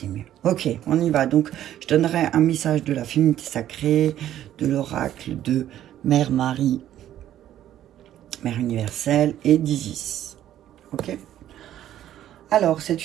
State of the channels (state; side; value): quieter; left; 11.9 dB